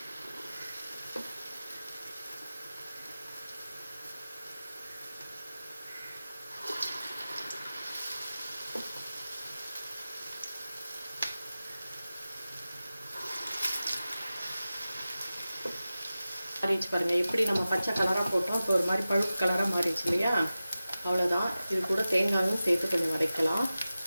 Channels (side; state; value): both; inverted; correlation -0.95